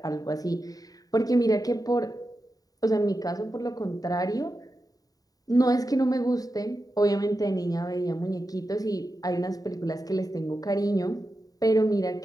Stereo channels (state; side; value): late; right; 0.18 ms